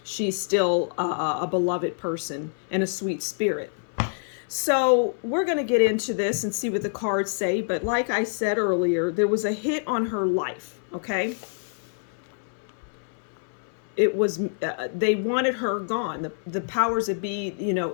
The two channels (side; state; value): right; silent; 61 dB below the other